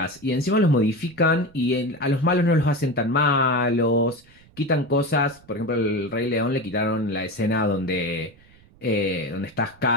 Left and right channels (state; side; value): noise; right; rumble, 27 dB below the sound